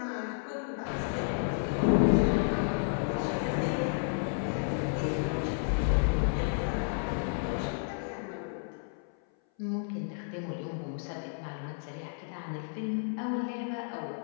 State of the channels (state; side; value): silent; right; 57 dB below the other